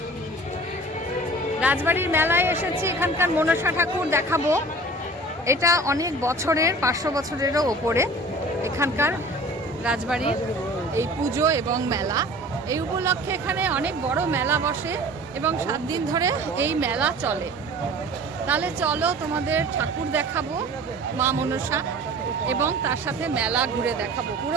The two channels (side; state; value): both; normal; correlation 0.43